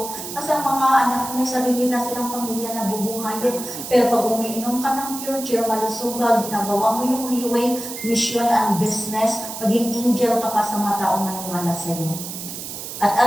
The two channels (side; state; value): right; noise; hiss, 9 dB below the sound